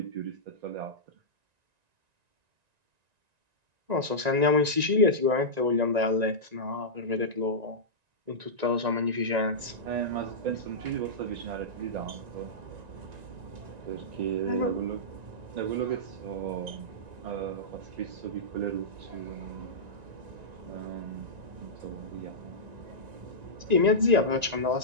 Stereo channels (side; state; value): left; late; 1.9 ms